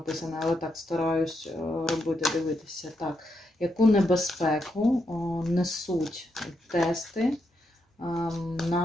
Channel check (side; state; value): both; normal; correlation 0.82